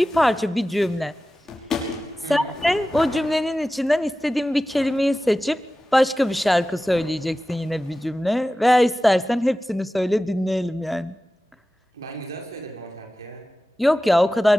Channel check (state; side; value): normal; both; correlation 0.95